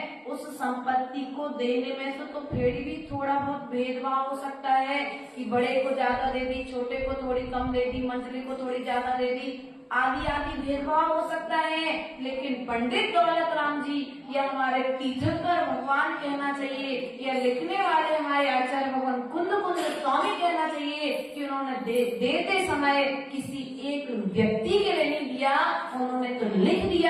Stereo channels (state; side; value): identical; both; correlation 1.00